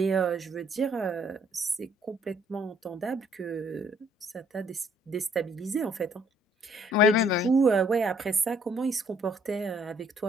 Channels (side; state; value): both; normal; correlation 0.63